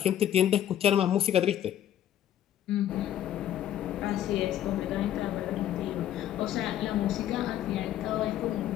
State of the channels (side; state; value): right; quieter; 11.3 dB